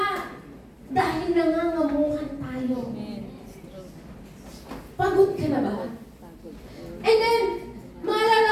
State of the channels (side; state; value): both; identical; correlation 1.00